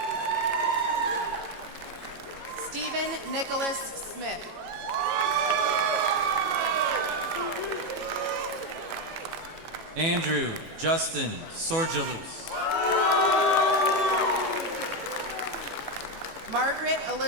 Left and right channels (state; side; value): late; left; 18 ms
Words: Stephen Nicholas Smith. Andrew Justin Sorgelus. Margaret